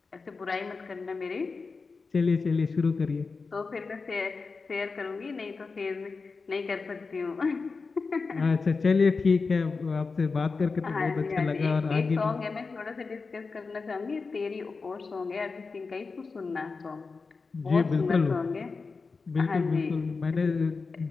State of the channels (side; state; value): right; quieter; 4.4 dB